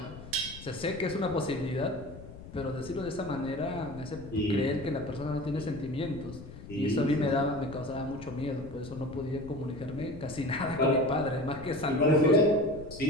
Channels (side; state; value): left; noise; rumble, 14 dB below the sound